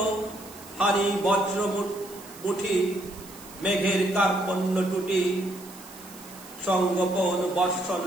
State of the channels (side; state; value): right; noise; hiss, 18 dB below the sound